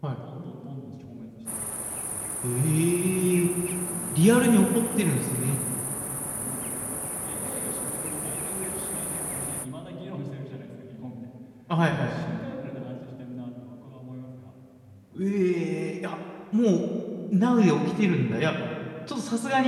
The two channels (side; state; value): both; identical; correlation 1.00